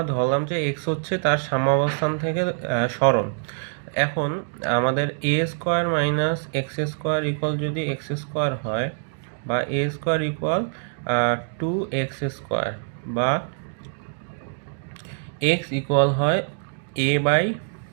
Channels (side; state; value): left; silent; digital silence